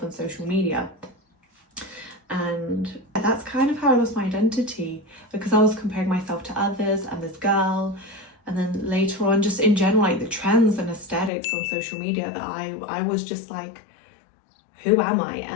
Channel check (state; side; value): drops out; right; at 11.3 s